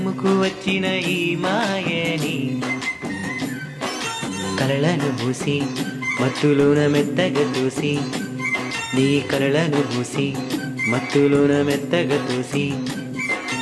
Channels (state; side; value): identical; both; correlation 1.00